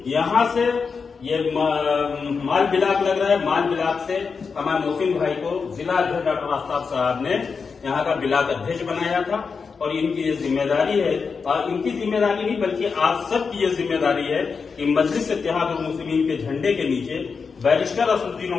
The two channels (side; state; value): right; quieter; 5.3 dB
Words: यहाँ से ये माल बिलाक लग रहा है, माल बिलाक से हमारे मोहसिन भाई को जिला अध्यक्ष डॉक्टर आफ्ताब साहब ने यहाँ का बिलाक अध्यक्ष बनाया था और इनकी ये जिम्मेदारी है, और इनकी जिम्मेदारी नहीं बल्कि आप सबकी ये जिम्मेदारी है कि मजलिस इत्तेहादुल मुस्लिमीन के झंडे के नीचे बैरिस्टर असदुद्दीन